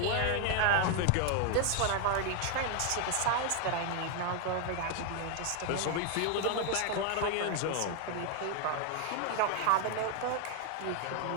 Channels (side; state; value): both; different; correlation 0.00